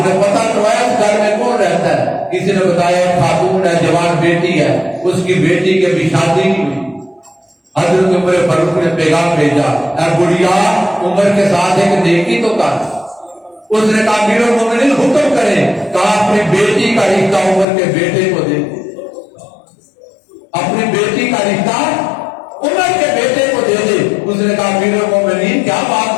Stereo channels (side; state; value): right; drops out; at 17.7 s